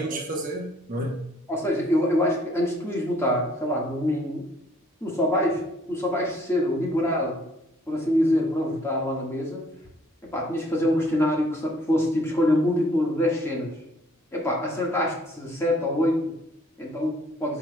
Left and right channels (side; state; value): both; normal; correlation 0.61